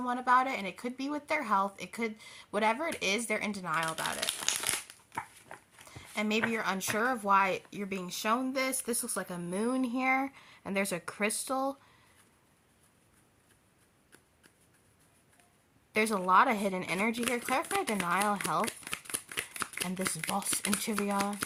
about it, and it could be with their health. It could, whatever it is, they're in denial about it. And maybe you're unsure of why you're being shown this. This looks like a moon here, and there's a crystal. There's a lot of hidden energy here. Clarify denial, health, and this Vos Interior.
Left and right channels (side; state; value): both; identical; correlation 1.00